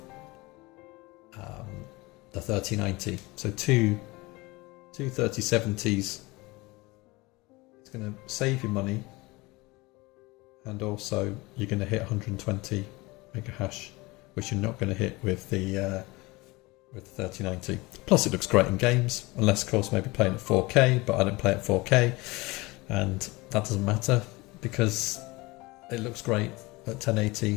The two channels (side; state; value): right; quieter; 22.8 dB